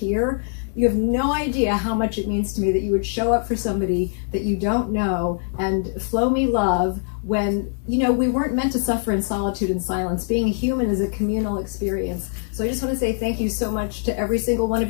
You have no idea how much it means to me that you would show up for somebody that you don't know and flow me love when, we weren't meant to suffer in solitude and silence. Being a human is a communal experience. So I just want to say thank you so much to every single one of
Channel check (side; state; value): right; silent; digital silence